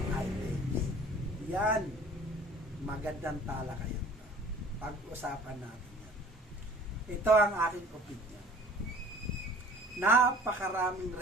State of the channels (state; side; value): normal; both; correlation 0.48